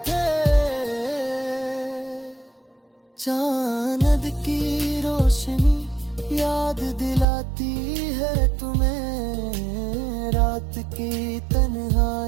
थे। चांद की रोशनी याद दिलाती है तुम्हें, रात की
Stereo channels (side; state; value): left; drops out; at 7.2 s